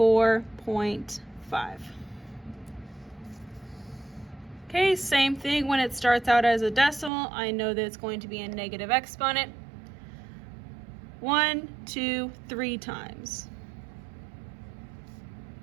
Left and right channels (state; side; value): drops out; left; at 7.1 s